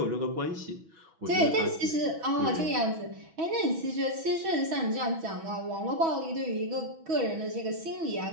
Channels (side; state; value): left; late; 6.1 ms